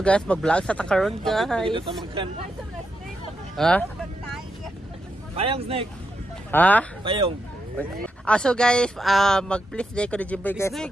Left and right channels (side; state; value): both; normal; correlation 0.84